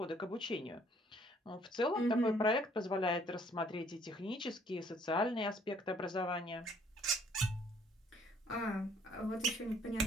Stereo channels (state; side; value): normal; both; correlation 0.62